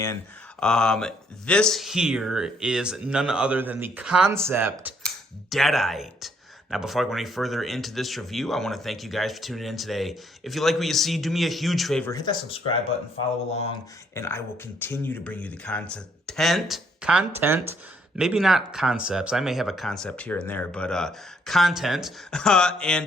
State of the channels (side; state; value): both; normal; correlation 0.69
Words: This here is none other than the Concept Deadite. Now, before I go any further into this review, I want to thank you guys for tuning in today. If you like what you see, do me a huge favor. Hit that subscribe button, follow along, and I will continue to bring you the content, maybe not concepts. I may have a concept here and there, but content.